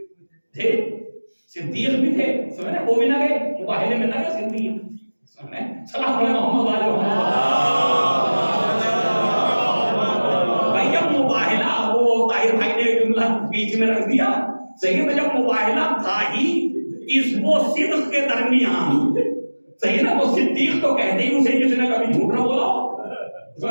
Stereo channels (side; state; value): both; inverted; correlation -1.00